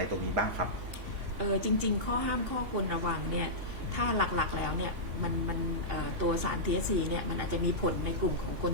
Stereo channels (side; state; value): left; late; 3.5 ms